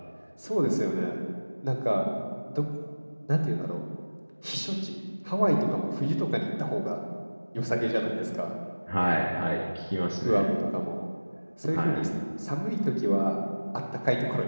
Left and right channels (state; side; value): inverted; both; correlation -1.00